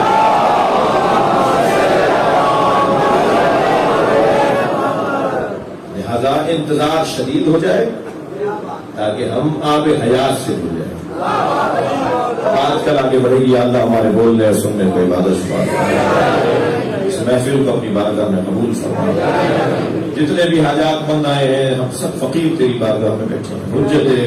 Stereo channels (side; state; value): both; identical; correlation 1.00